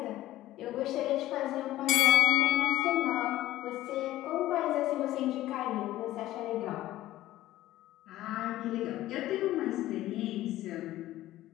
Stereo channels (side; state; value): right; quieter; 15.1 dB